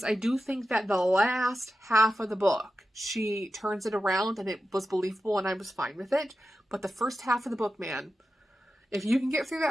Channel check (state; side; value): normal; both; correlation 0.91